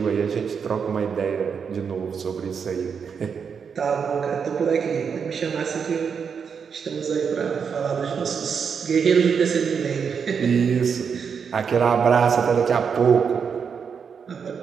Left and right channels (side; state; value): left; quieter; 6.5 dB